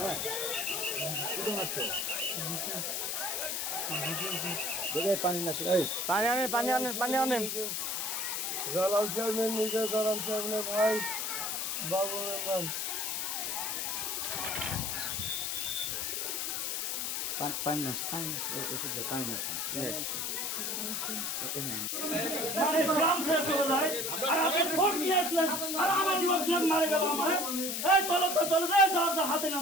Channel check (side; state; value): left; noise; hiss, 1 dB below the sound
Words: কোথায় মারছে দেখে পানি না এই পানি আনেন জালাল চেয়ারম্যান নিজে জালাল চেয়ারম্যানের ভাই বাবু মেম্বার পানি না ওষুধ পানি না মানে গ্রাম ছেড়ে চলে যায় আর আপনি ফোর্স নিয়ে আসলেন আর আমার লোকজন মারে গেল আমার এই চলো তো চলে যায় যার যা হাতে